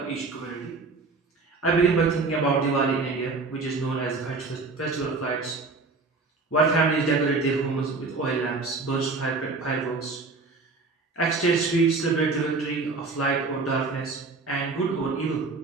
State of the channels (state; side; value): quieter; left; 3.9 dB